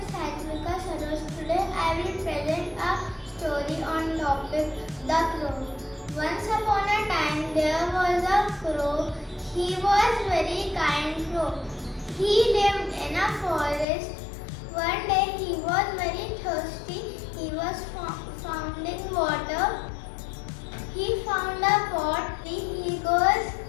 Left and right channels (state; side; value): drops out; right; at 13.9 s